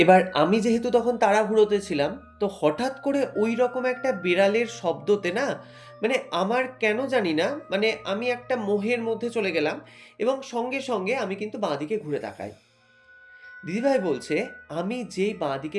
এবার আমি যেহেতু তখন তাড়াহুড়োতে ছিলাম, তো হঠাৎ করে ঐরকম একটা বিড়ালের শব্দতে না, মানে আমার কেন জানি না, মানে আমি একটা মোহের মধ্যে চলে গেলাম, এবং সঙ্গে আমি কিন্তু বাঁদিকে ঘুরে তাকাই। দিদিভাই বলছে আমি যেই বাঁদিকে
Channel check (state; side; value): identical; both; correlation 1.00